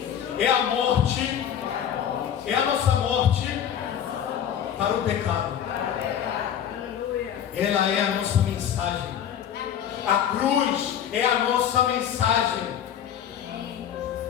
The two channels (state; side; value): quieter; right; 9.4 dB